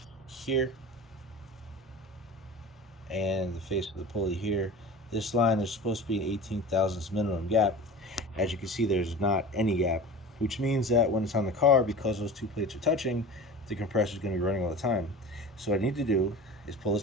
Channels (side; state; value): both; normal; correlation 0.35